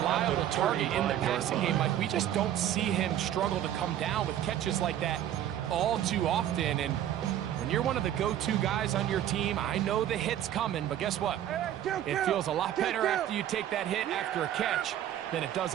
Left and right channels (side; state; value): left; quieter; 11.4 dB